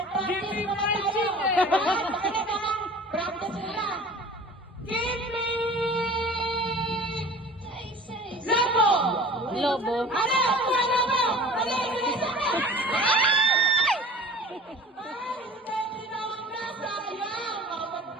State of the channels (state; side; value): normal; both; correlation 0.42